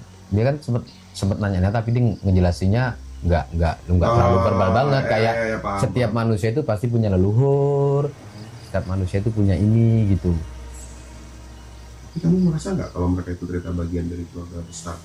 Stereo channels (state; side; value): identical; both; correlation 1.00